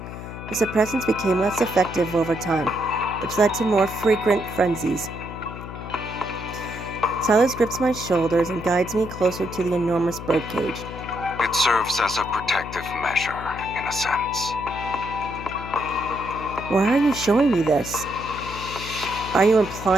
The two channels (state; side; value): noise; left; hum, 10 dB below the sound